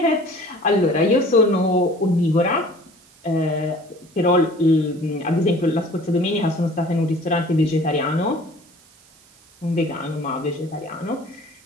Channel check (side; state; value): right; noise; hiss, 28 dB below the sound